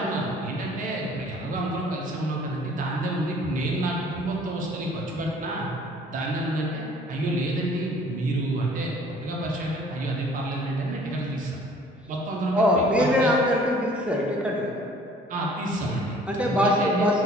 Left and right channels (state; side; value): normal; both; correlation 0.53